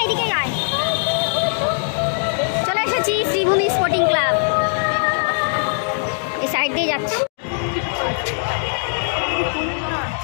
শ্রীভূমি স্পোর্টিং ক্লাব, এই সাইড দিয়ে যাচ্ছি।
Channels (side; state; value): right; silent; digital silence